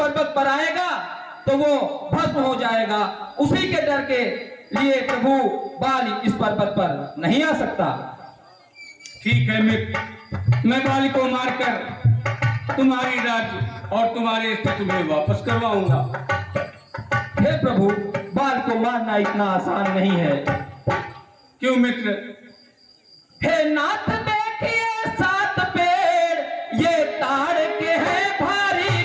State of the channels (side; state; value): both; identical; correlation 1.00